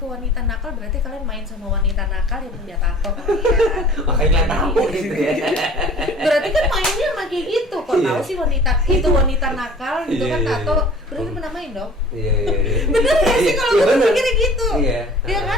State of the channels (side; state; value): both; normal; correlation 0.47